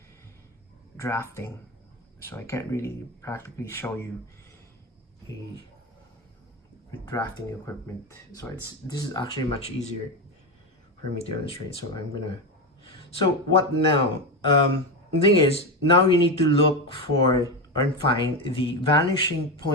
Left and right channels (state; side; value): normal; both; correlation 0.15